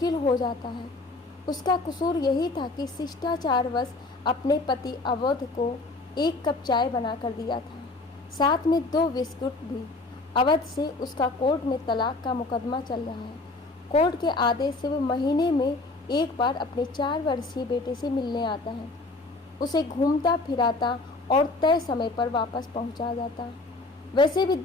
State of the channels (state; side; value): quieter; right; 3.2 dB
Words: हो जाता है। उसका कसूर यही था कि शिष्टाचारवश अपने पति अवध को 1 कप चाय बना कर दिया था, साथ में 2 बिस्कुट भी। अवध से उसका कोर्ट में तलाक का मुकदमा चल रहा है। कोर्ट के आदेश से वह महीने में एक बार अपने 4 वर्षीय बेटे से मिलने आता है। उसे घूमता फिराता और तय समय पर वापस पहुंचा जाता। वैसे भी